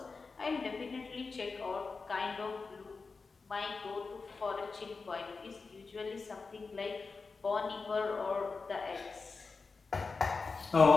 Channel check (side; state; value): right; quieter; 4.4 dB